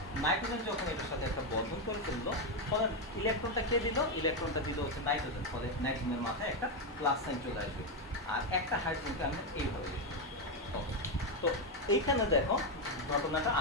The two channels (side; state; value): both; normal; correlation 0.06